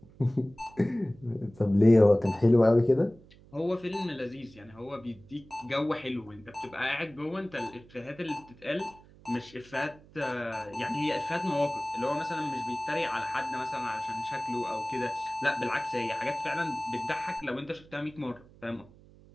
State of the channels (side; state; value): right; noise; hum, 24 dB below the sound